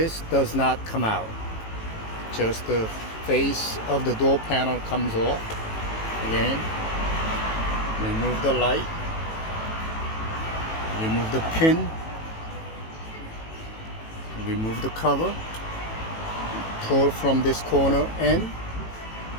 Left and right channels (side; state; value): right; late; 18 ms